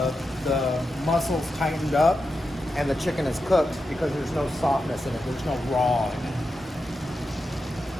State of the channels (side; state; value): both; normal; correlation 0.89